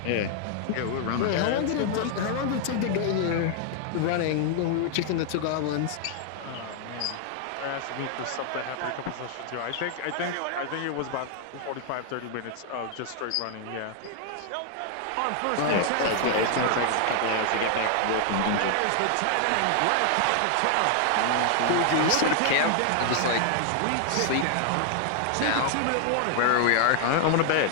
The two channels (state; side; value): different; both; correlation 0.00